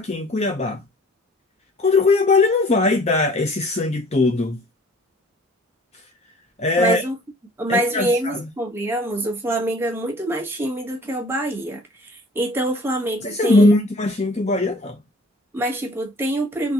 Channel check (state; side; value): normal; both; correlation 0.51